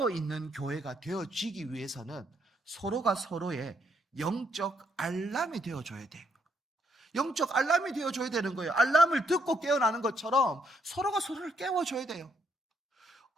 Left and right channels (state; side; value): normal; both; correlation 0.73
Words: 교회가 되어지기 위해서는 서로가 서로의 영적 알람이 되어줘야 돼요. 영적 알람이 되어줘야 되는 거예요. 알람을 듣고 깨어나는 것처럼 서로가 서로를 깨워줘야 돼요.